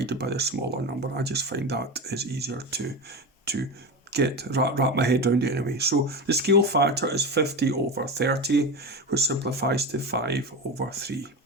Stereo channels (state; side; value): normal; both; correlation 0.22